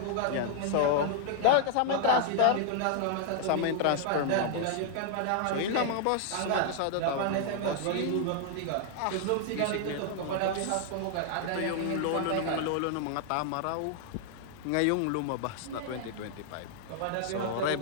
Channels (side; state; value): both; different; correlation 0.00